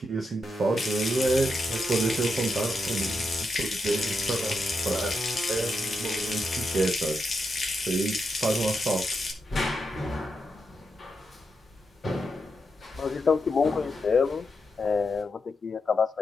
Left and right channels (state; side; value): normal; both; correlation 0.85